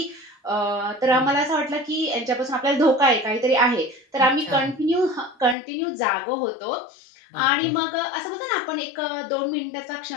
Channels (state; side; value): drops out; right; at 5.6 s